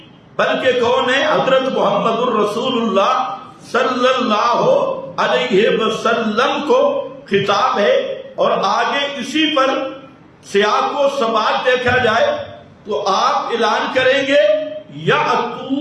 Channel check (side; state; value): both; identical; correlation 1.00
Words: بلکہ کون ہے؟ حضرت محمد الرسول اللہ صلی اللہ علیہ وسلم کو خطاب ہے۔ اور آگے اسی پر سیاق و سباق دیکھا جائے تو آپ اعلان کریں گے